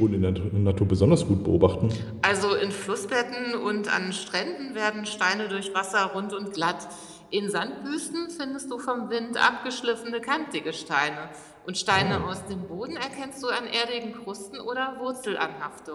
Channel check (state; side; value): identical; both; correlation 1.00